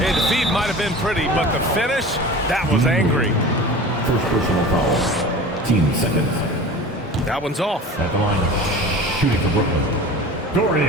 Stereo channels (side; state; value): both; normal; correlation 0.37